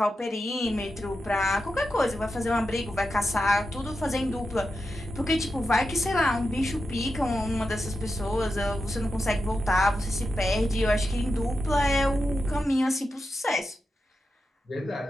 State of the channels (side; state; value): both; normal; correlation 0.89